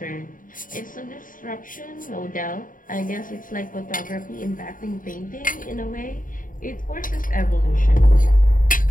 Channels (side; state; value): right; late; 0.39 ms